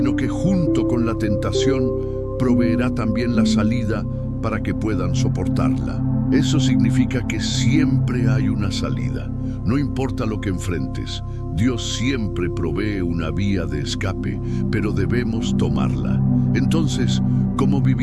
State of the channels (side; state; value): both; identical; correlation 1.00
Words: que junto con la tentación proveerá también la salida para que puedan soportarla. Eso significa que siempre hay una salida. No importa lo que enfrentes, Dios siempre provee una vía de escape, pero debemos tomarla. Entonces, ¿cómo